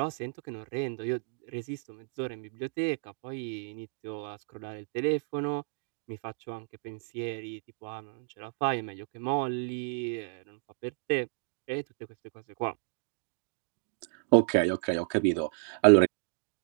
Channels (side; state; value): left; silent; digital silence